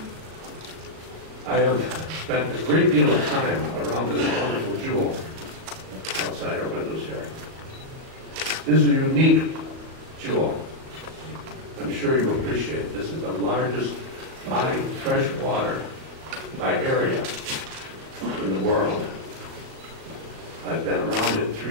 I have spent a great deal of time around this wonderful jewel outside our windows here. This is a unique jewel. I'm sure you appreciate. This is the largest body of fresh water by area in the world. I've been around it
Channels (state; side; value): late; left; 37 ms